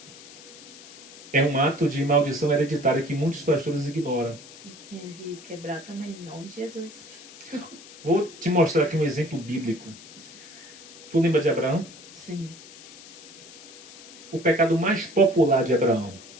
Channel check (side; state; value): left; noise; hiss, 19 dB below the sound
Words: É um ato de maldição hereditária que muitos pastores ignoram. E tinha de quebrar também, em nome de Jesus. Vou te mostrar aqui um exemplo bíblico. Tu lembra de Abraão? Sim. O pecado mais popular de Abraão.